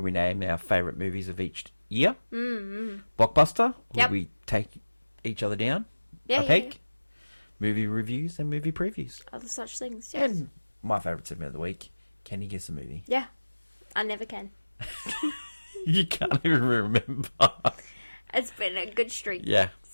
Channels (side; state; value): both; inverted; correlation -1.00